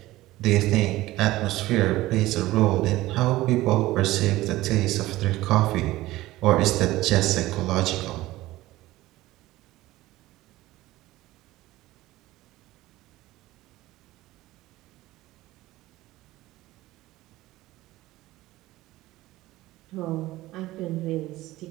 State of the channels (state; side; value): quieter; left; 17.3 dB